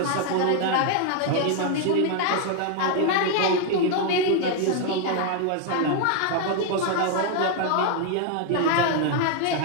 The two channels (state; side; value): different; both; correlation 0.00